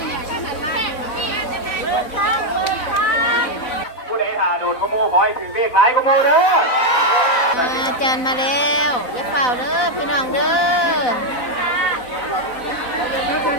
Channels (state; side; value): late; right; 4.0 ms